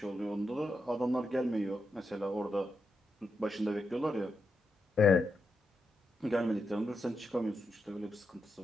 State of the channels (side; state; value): both; normal; correlation 0.85